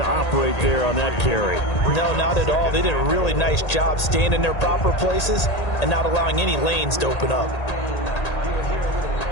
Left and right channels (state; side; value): late; right; 1.8 ms